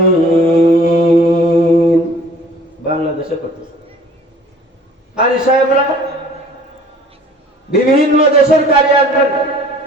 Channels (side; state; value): both; normal; correlation 0.51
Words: বাংলাদেশে করতেছে। আর সাহেবরা বিভিন্ন দেশের কারি আসবেন।